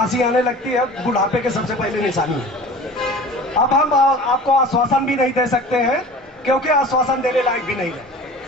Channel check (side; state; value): both; normal; correlation 0.40